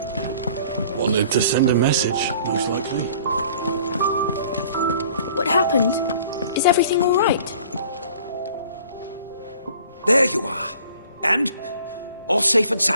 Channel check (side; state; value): both; inverted; correlation -0.51